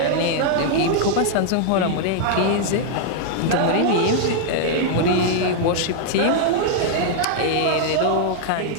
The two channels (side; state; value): both; different; correlation -0.01